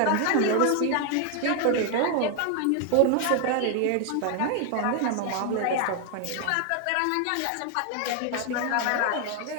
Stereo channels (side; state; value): both; different; correlation 0.00